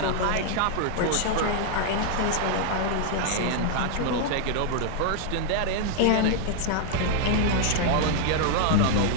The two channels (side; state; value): both; different; correlation 0.00